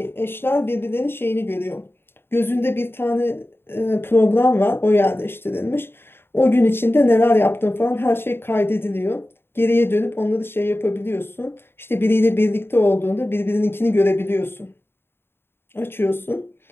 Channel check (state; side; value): late; right; 0.11 ms